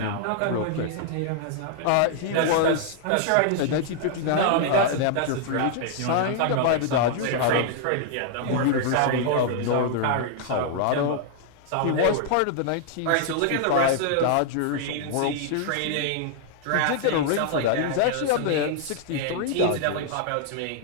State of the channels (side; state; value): both; different; correlation -0.01